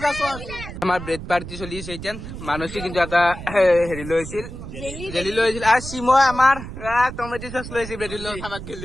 সস আমাৰ ব্ৰেড পাৰ্টি চলিছে এতিয়া মানসি কিন্তু এটা হেৰি লৈছিল জেলি লৈছিল আৰু শিমই আমাৰ টমেটো সস লৈছিল ব্রেড লৈ খাবাক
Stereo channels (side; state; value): right; noise; rumble, 10 dB below the sound